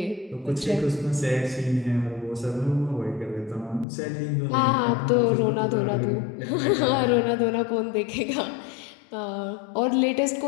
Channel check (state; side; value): drops out; right; at 3.9 s